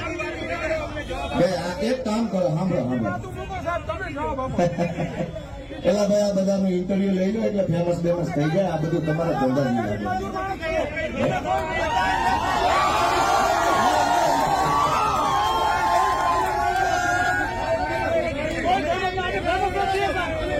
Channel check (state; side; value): identical; both; correlation 1.00